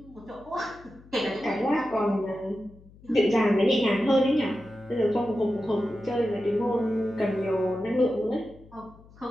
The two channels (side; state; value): left; noise; hum, 24 dB below the sound